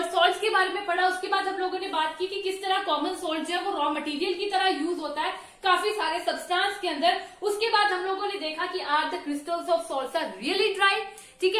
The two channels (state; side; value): identical; both; correlation 1.00